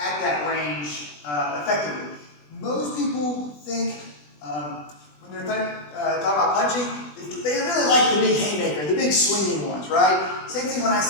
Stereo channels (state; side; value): late; right; 20 ms